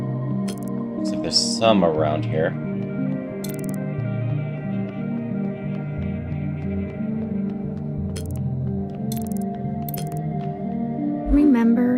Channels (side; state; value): both; identical; correlation 1.00